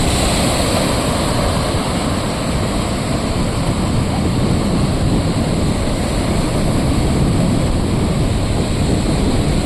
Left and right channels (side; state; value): both; identical; correlation 1.00